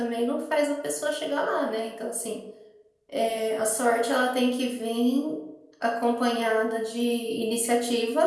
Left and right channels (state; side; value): identical; both; correlation 1.00